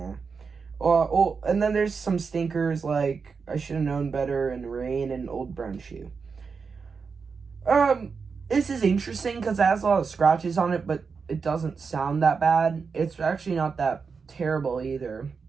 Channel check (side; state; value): left; quieter; 5.3 dB